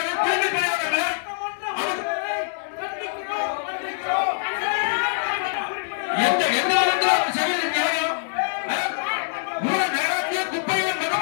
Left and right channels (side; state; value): right; silent; digital silence